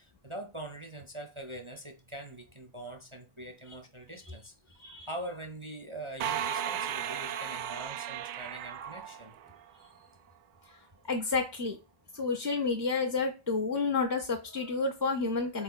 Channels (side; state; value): left; late; 2.2 ms